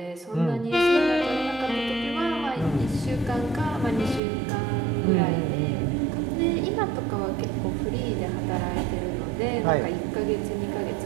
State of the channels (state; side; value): drops out; left; at 4.2 s